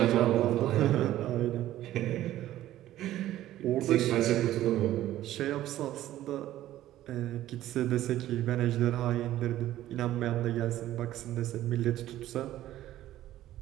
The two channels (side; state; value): left; quieter; 13.8 dB